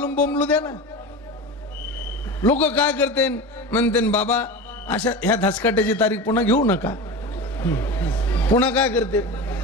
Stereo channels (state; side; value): normal; both; correlation 0.28